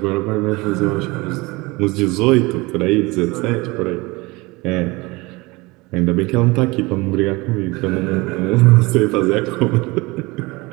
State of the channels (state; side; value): quieter; left; 23.5 dB